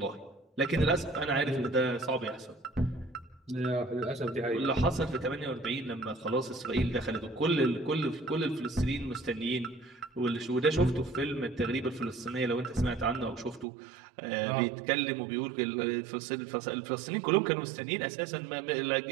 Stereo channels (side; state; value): left; drops out; at 13.7 s